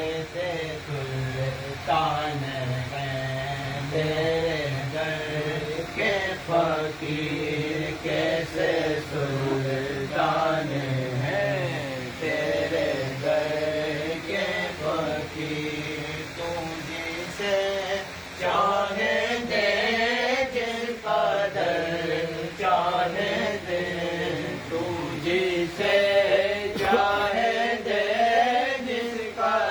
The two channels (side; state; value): both; identical; correlation 1.00